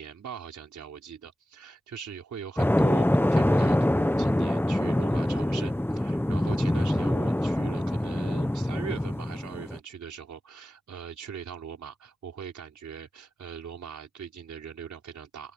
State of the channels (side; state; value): both; normal; correlation 0.94